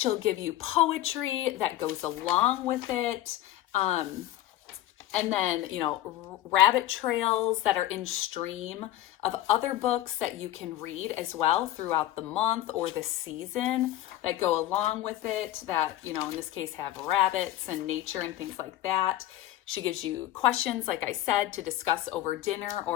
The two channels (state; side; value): quieter; right; 14.2 dB